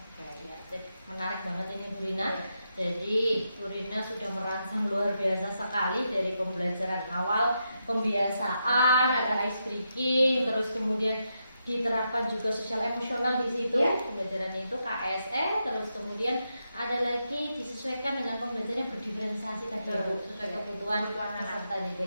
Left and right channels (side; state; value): both; inverted; correlation -0.84